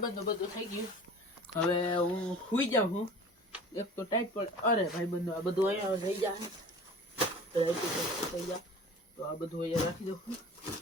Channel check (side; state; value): both; normal; correlation 0.42